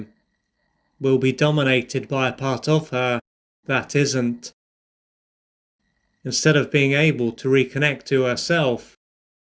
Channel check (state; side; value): identical; both; correlation 1.00